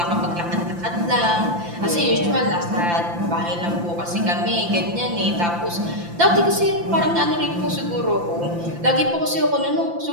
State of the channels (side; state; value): left; late; 5.8 ms